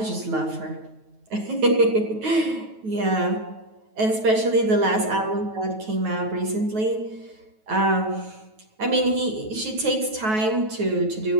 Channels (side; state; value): left; late; 9.3 ms